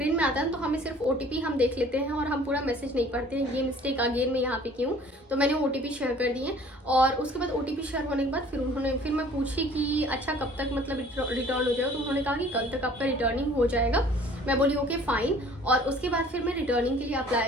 में आता है तो हमें सिर्फ OTP हम देख लेते हैं और हम पूरा मैसेज नहीं पढ़ते हैं। ये मिस्टेक अगेन मैं यहाँ पे की हूँ, तो मैंने OTP शेयर कर दिए। और उसके बाद OTP शेयर होने के बाद फिर मैं पूछी कि अच्छा कब तक मतलब रिटर्न हो जाएगा, तो उन्होंने कहा कि कल तक आपका रिटर्निंग हो जाएगा। मैं बोली ओके फाइन। और उसके बाद फिर मैं रिटर्निंग के लिए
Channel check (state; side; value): normal; both; correlation 0.52